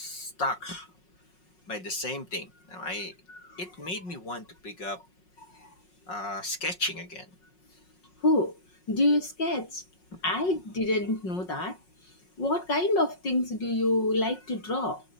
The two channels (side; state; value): right; late; 5.5 ms